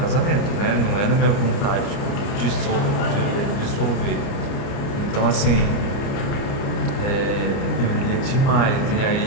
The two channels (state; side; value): late; right; 30 ms